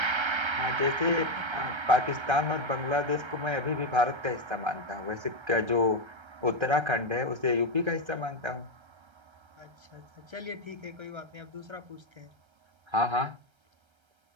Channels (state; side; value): late; left; 1.3 ms